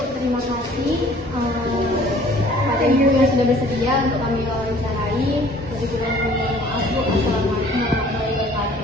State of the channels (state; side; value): normal; both; correlation 0.53